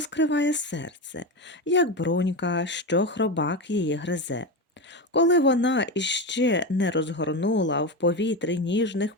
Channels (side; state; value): both; normal; correlation 0.18